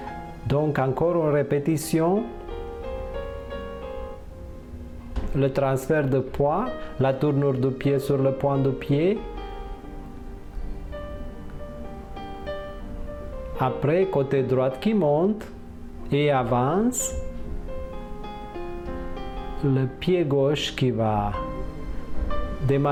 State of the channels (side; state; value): both; identical; correlation 1.00